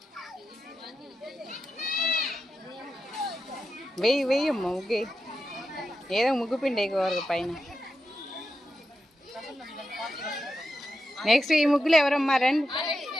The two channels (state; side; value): normal; both; correlation 0.88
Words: వెయ్యమ్మా ముగ్గు, ఏదో ముగ్గు పిండి ఎక్కువ పైన. నెక్స్ట్ ఈ ముగ్గులు ఎవరమ్మా? రండి.